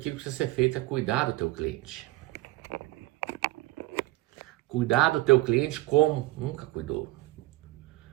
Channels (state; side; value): quieter; left; 18.5 dB